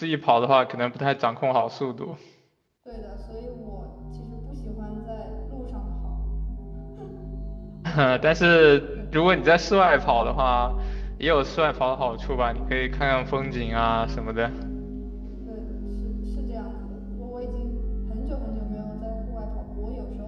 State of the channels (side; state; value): both; identical; correlation 1.00